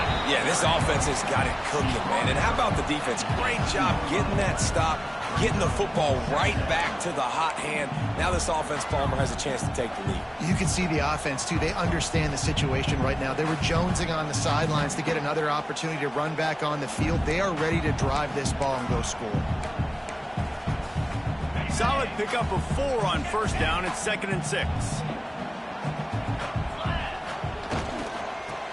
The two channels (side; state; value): both; identical; correlation 1.00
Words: Yeah, this offense has got it cooking, man. And how about the defense? Great job getting that stop, getting the football right back to the hot hand. Now this offense, Palmer, has a chance to take the lead. You can see the offense, too. They understand the situation right now. They were jonesing on the sidelines to get another opportunity to run back on the field. They are ready to drive this ball and go score. Solid pickup of 4 on first down. It's 2nd and 6.